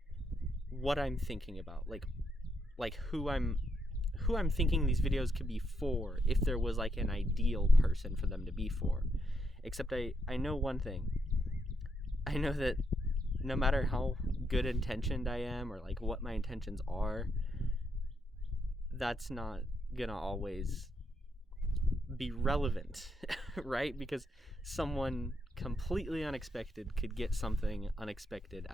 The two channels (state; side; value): normal; both; correlation 0.79